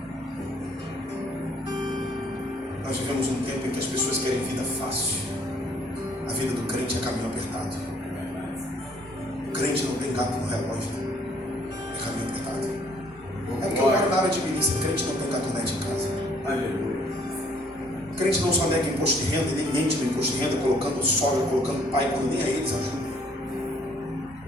Nós vivemos um tempo em que as pessoas querem vida fácil. A vida do crente é caminho apertado. O crente não tem gato no relógio, é caminho apertado. É porque eu moro na área de milícia, crente não tem gatonete em casa. Aleluia. Crente não só nega imposto de renda, nem mente no imposto de renda, colocando sogra, colocando pai, quando nem a eles ajuda.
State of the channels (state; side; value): normal; both; correlation 0.62